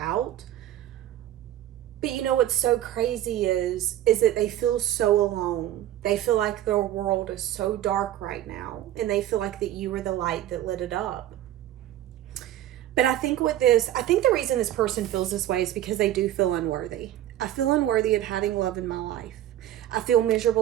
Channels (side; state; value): left; quieter; 12.7 dB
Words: But you know what's so crazy is that they feel so alone. They feel like their world is so dark right now. And they feel like that you were the light that lit it up. But I think the reason this person feels this way is because they do feel unworthy. I feel unworthy of having love in my life. I feel